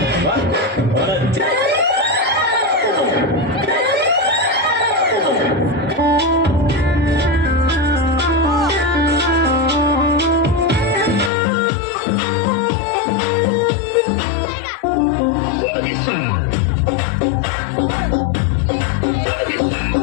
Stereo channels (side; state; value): right; drops out; at 11.3 s